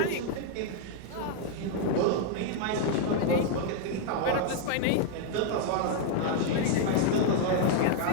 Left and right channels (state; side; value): different; both; correlation 0.00